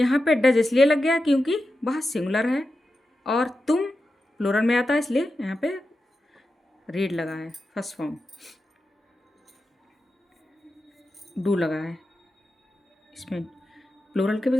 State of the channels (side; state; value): both; normal; correlation 0.90